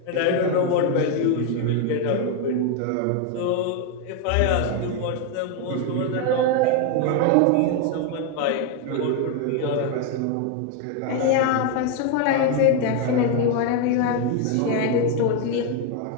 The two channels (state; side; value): different; both; correlation 0.01